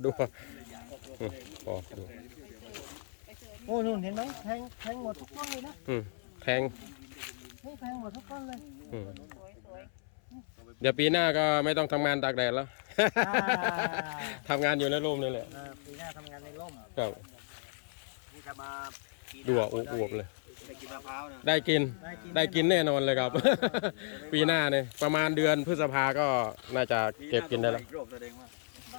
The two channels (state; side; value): silent; right; 56 dB below the other